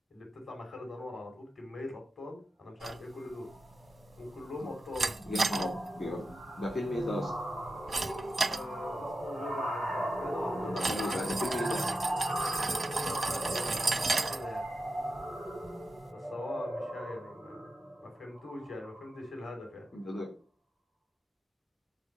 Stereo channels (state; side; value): normal; both; correlation 0.90